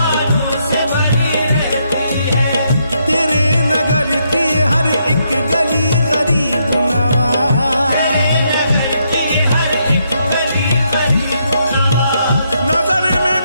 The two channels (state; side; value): inverted; both; correlation -0.76